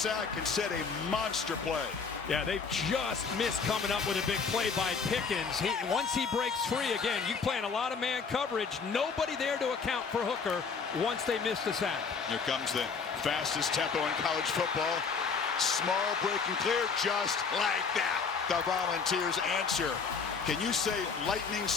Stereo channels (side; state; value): right; quieter; 5.4 dB